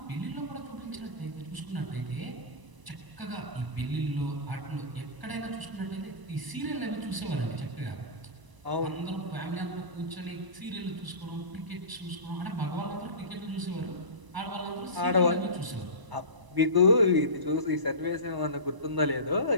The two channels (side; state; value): left; late; 1.0 ms